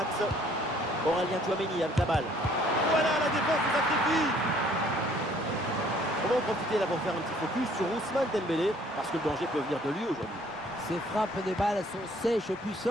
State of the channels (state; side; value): normal; both; correlation 0.59